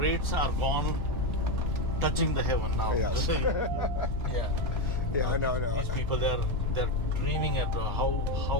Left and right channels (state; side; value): normal; both; correlation 0.11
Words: are gone touching the heaven now. Yes. Yeah. Yeah, no. These people, they're dreaming at